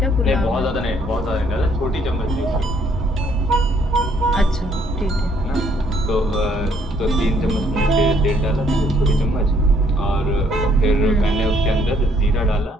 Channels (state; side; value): normal; both; correlation 0.66